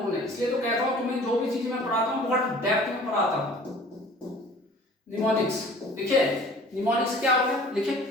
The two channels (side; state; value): both; normal; correlation 0.48